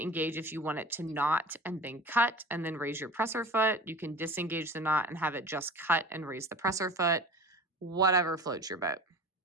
if you want it to knot and then cut and then raise your presser foot. You can disengage the knot and have it just cut and raise the presser foot, whatever floats your boat.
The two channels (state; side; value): normal; both; correlation 0.38